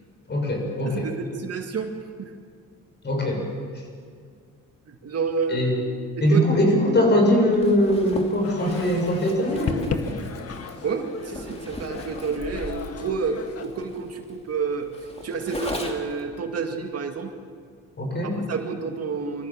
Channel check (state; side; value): normal; both; correlation 0.36